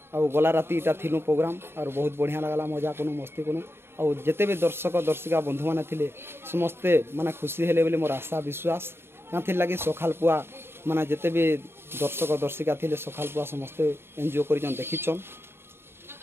और गला राति इटा थिलु प्रोग्राम और बहुत बढ़िया लगला मजा कनु मस्ती कनु और जिते भी दर्शक दर्शिका बंधु मैंने थिले समस्ते माने खुशी हेले बोली मोर आशा विश्वास यहाँ लगी सखाल पुआ माने जिते भी दर्शक दर्शिका थिले सखाल पुआ समस्ते एंजॉय कर देखीछन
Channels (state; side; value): late; left; 0.11 ms